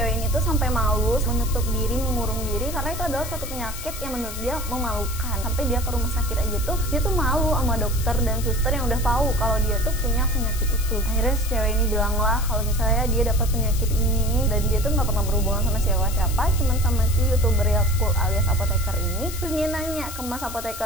ini tuh sampai malu, menutup diri, mengurung diri, karena itu adalah suatu penyakit yang menurut dia memalukan. Sampai dia ke rumah sakit aja tuh dia tuh malu sama dokter dan suster yang udah tahu kalau dia tuh punya penyakit itu. Akhirnya si cewek ini bilang lah kalau misalnya dia dapat penyakit ini dan dia tuh nggak pernah berhubungan sama siapa-siapa, cuman sama si youtuber Yakult alias apoteker ini. Terus dia nanya ke mas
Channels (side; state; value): left; noise; hiss, 10 dB below the sound